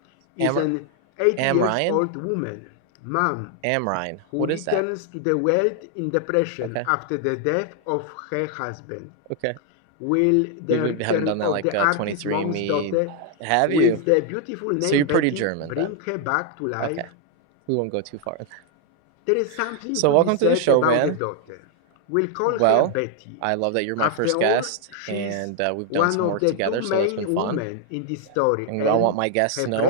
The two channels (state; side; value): different; both; correlation 0.00